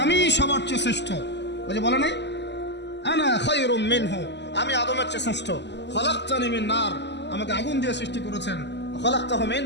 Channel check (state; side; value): late; right; 0.51 ms